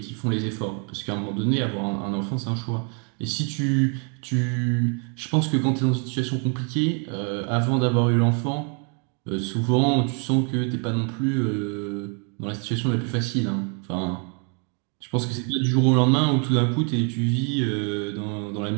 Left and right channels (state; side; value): quieter; left; 38.3 dB